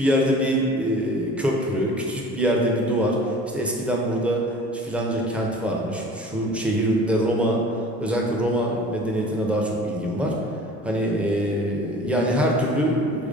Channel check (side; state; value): both; normal; correlation 0.44